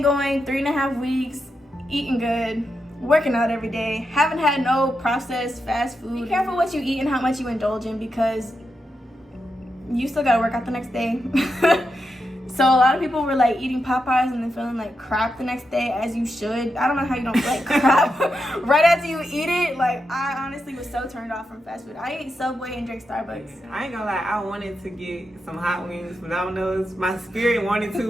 going 3.5 weeks, eating good, working out every day, haven't had no processed fast food. Be careful what you eat and how much you indulge in, because you still gotta work out the next day. So a lot of people were like eating Popeyes and then feeling like crap the next day, as you should. I don't know how you don't feel like crap right after you eat it. Like, I honestly was so turned off from fast food. I ate Subway and drank Starbucks. I ain't gonna lie, I wanted to get some hot wings from Domino's. My spirit wanted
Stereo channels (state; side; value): normal; both; correlation 0.86